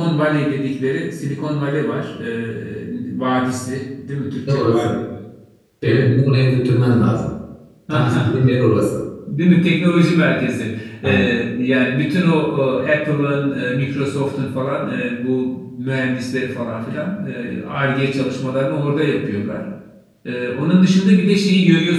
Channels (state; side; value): identical; both; correlation 1.00